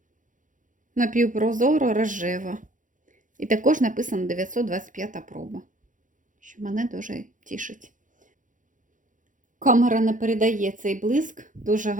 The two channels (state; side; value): late; left; 0.38 ms